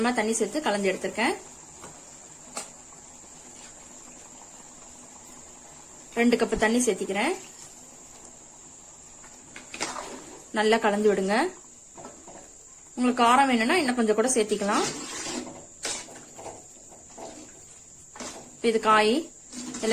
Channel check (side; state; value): both; identical; correlation 1.00